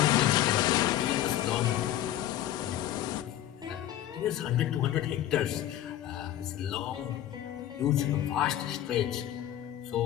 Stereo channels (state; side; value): quieter; right; 12.5 dB